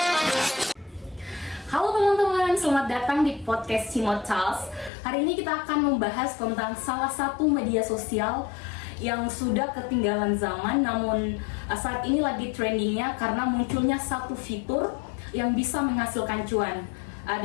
teman-teman, selamat datang di podcast Cimot Charles. Hari ini kita akan membahas tentang salah satu media sosial yang sudah ketinggalan zaman, namun saat ini lagi trendingnya karena munculnya satu fitur yang bisa menghasilkan cuan.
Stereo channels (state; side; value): drops out; right; at 4.9 s